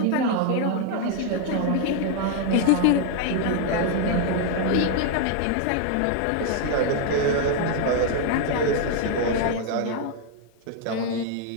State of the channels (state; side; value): different; both; correlation 0.00